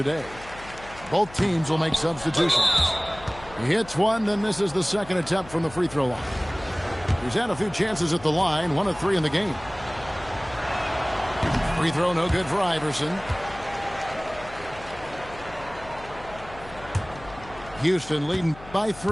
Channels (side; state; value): left; noise; hum, 18 dB below the sound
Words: Both teams will make substitutions. He hits one, then misses the second attempt from the free throw line. He's had a few chances at the line, 1 of 3 in the game. Free throw no good for Iverson. Houston leading by